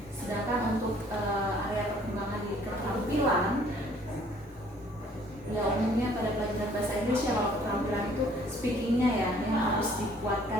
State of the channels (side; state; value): both; normal; correlation 0.58